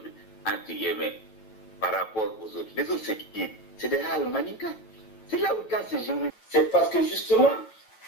entre guillemets, par rapport aux autres, les autres c'est qui? C'est des Hal Maninka. C'est là où quand c'est géométrie. C'est parce que justement,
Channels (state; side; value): late; right; 9.1 ms